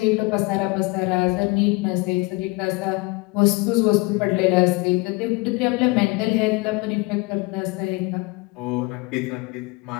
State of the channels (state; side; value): quieter; right; 25.1 dB